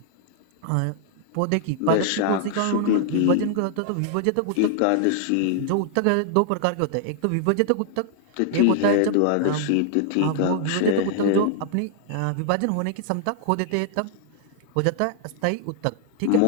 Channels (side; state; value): both; different; correlation -0.01